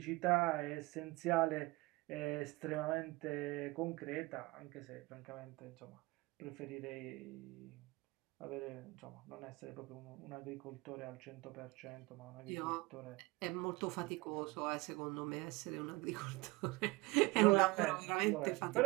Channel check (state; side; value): quieter; left; 23.0 dB